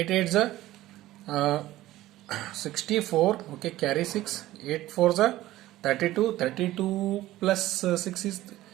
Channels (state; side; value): quieter; left; 15.8 dB